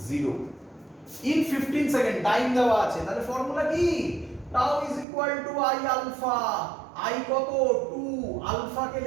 0 in 15 সেকেন্ড টাইম দেওয়া আছে। তাহলে formula কি? tau is equal to i alpha। i কত? 2। আলফা কে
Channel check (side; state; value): left; drops out; at 5.1 s